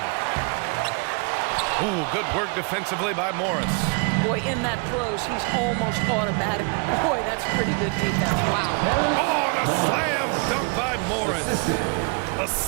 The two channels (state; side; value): quieter; left; 35.0 dB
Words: Ooh, good work defensively by Morris. Boy, in that close, he's almost automatic. Boy, that's pretty good defense. Wow. Oh, and a slam dunk by Morris. A